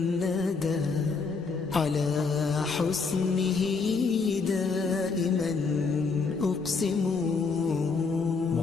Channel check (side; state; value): right; quieter; 4.6 dB